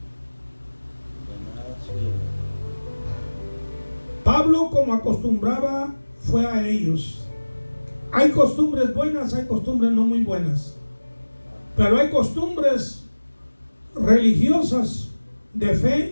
Pablo, como acostumbraba, fue a ellos. Hay costumbres buenas, hay costumbres no muy buenas, pero hay costumbres religiosas de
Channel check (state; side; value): inverted; both; correlation -1.00